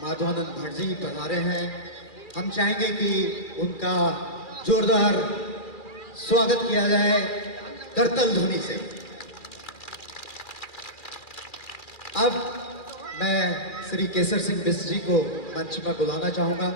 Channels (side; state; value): right; late; 2.4 ms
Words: माधवानंद भट्ट जी पधारे हैं। हम चाहेंगे कि उनका जोरदार स्वागत किया जाए करतल ध्वनि से। अब मैं श्री केसर सिंह बिष्ट जी को मंच में बुलाना चाहूंगा।